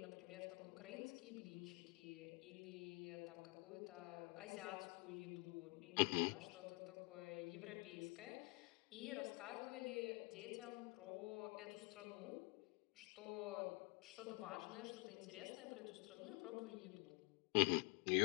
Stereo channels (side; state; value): right; quieter; 27.5 dB